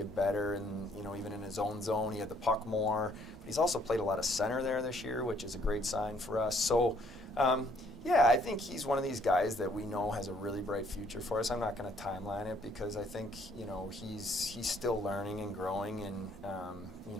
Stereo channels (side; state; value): both; normal; correlation 0.64